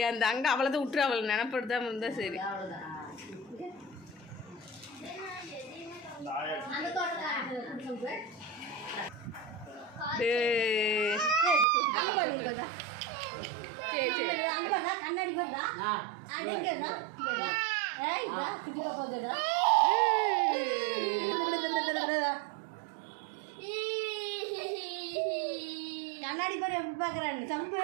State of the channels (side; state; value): left; drops out; at 11.7 s